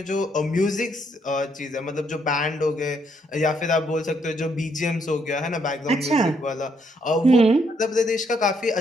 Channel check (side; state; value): both; normal; correlation 0.73